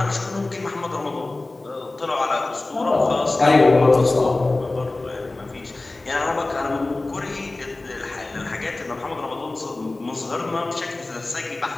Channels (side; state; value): right; quieter; 3.1 dB